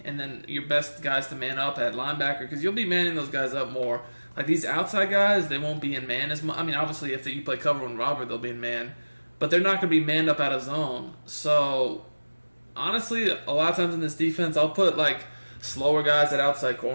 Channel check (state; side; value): inverted; both; correlation -1.00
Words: and then your best guys to man up at linebacker, because you'll be manning those guys up more. Like these outside guys, they won't be in man as much. I mean, obviously, if you play cover and robber, they'll be in man, but they're not going to be manned up out of zone. So, honestly, a lot of times in this defense, I'll put, slower guys at outside